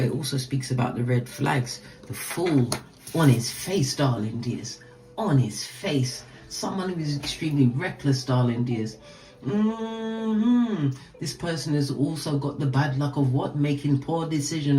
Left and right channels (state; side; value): identical; both; correlation 1.00